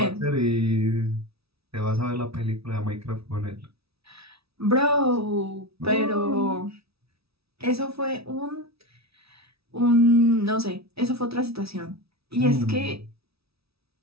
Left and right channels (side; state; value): left; late; 0.77 ms